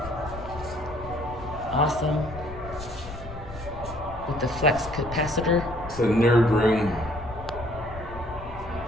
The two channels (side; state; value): left; noise; rumble, 12 dB below the sound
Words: Awesome. With the flex capacitor. It's a nerd room.